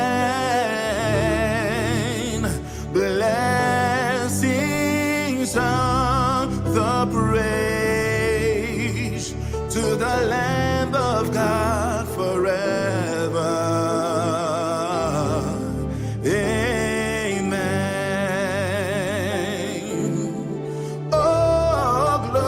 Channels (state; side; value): identical; both; correlation 1.00